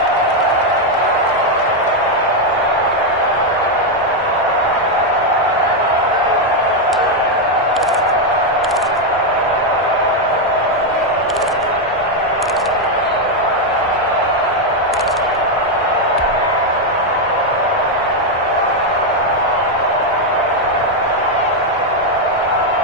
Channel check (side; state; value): both; normal; correlation 0.02